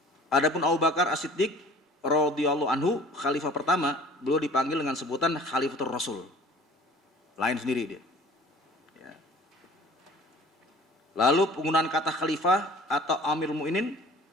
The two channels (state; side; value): normal; both; correlation 0.48